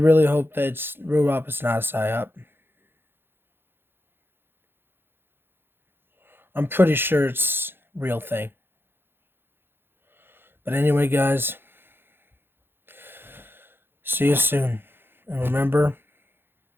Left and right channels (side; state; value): left; late; 0.10 ms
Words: hope that it's brew up. It's not a psyop. I'm pretty sure it's a real thing. But anyway, guys, see you soon. And remember,